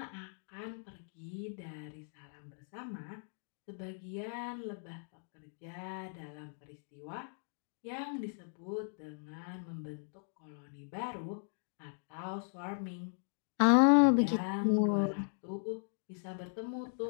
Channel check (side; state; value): right; silent; digital silence